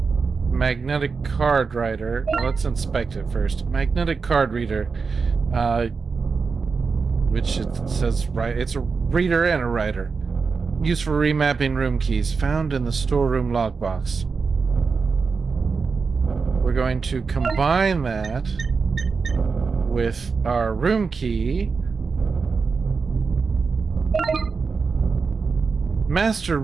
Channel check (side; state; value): left; quieter; 4.9 dB